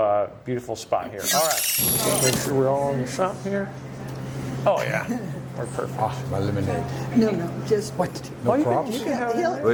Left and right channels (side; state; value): both; identical; correlation 1.00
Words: beautiful spot here. All right, make sure we're all on the shop here. Oh yeah, we're perfect. Oh, my lemonade. No, just what? No props? You can have He'll-